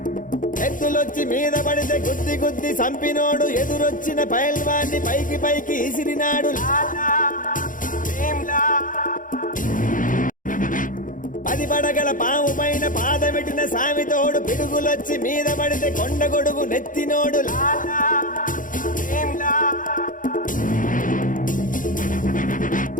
ఎత్తులొచ్చి మీద పడితే గుద్ది గుద్ది సంపినోడు ఎదురొచ్చిన పైల్వాన్ని పైకి పైకి ఇసిరినాడు లాలా ఏంలా. పది పడగల పాము పైన పాదమెట్టిన సామితోడు పిడుగులొచ్చి మీద పడితే కొండ గొడుగు నెత్తినోడు లాలా ఏంలా.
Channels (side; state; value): right; late; 0.39 ms